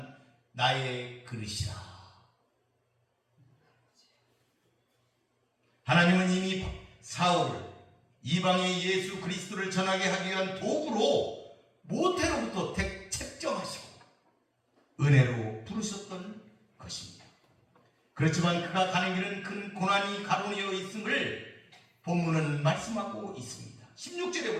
나의 그릇이라. 하나님은 이미 사울을 이방의 예수 그리스도를 전하게 하기 위한 도구로 모태로부터 책정하시고 은혜로 부르셨던 것입니다. 그렇지만 그가 가는 길은 큰 고난이 가로되어 있음을 본문은 말씀하고 있습니다. 16절에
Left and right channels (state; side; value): identical; both; correlation 1.00